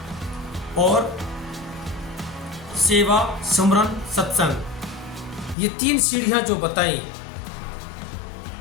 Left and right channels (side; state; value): right; drops out; at 5.6 s